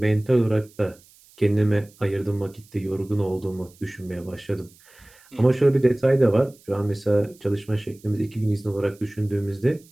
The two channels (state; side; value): noise; right; hiss, 27 dB below the sound